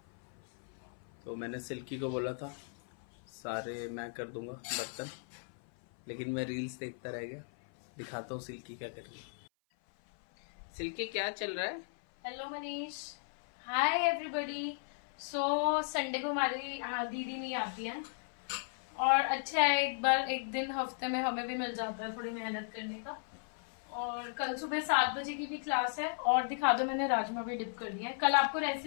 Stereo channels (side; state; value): right; silent; 54 dB below the other